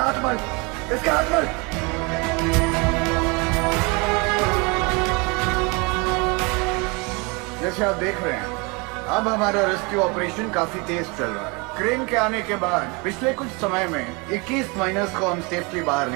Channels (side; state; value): left; quieter; 28.9 dB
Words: हाथ मल, इसका हाथ मल। जैसे आप देख रहे हैं, अब हमारा रेस्क्यू ऑपरेशन काफी तेज चल रहा है। क्रेन के आने के बाद पिछले कुछ समय में 21 माइनर्स को हम सेफली बाहर